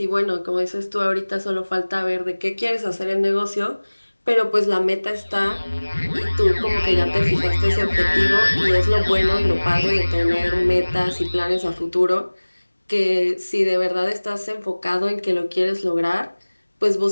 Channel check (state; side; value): inverted; both; correlation -1.00